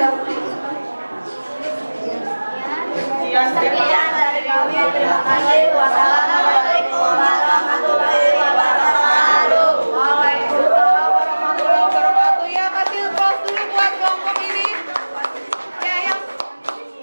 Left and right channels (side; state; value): both; inverted; correlation -1.00